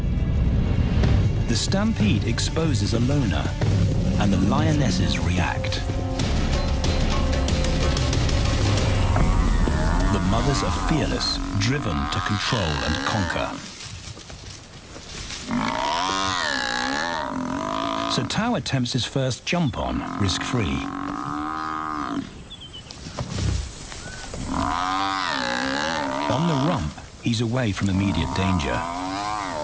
The stampede exposes a loner, and the lionesses react. The mothers are fearless, driven to control and conquer. So Tau attempts his first jump on, risk-free. On the rump, he's away from immediate danger.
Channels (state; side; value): identical; both; correlation 1.00